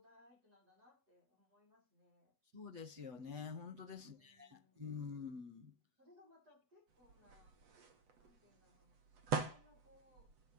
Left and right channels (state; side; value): late; left; 8.0 ms